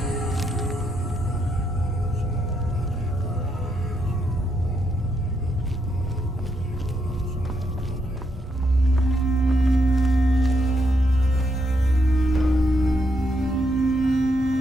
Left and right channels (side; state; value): both; normal; correlation 0.78